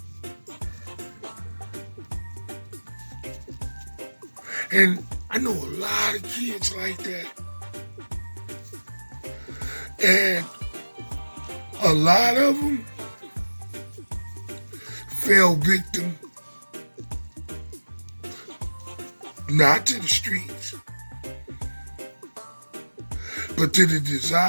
And I know a lot of kids like that. And a lot of them fell victim not to the streets, but to the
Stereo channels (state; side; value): inverted; both; correlation -1.00